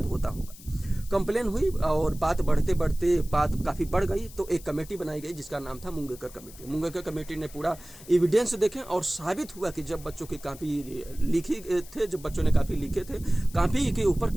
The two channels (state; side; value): noise; left; hiss, 19 dB below the sound